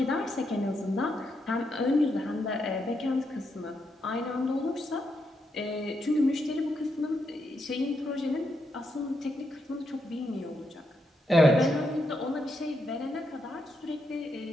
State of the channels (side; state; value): both; normal; correlation 0.81